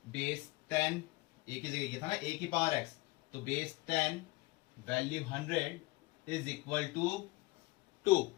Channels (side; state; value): right; quieter; 22.0 dB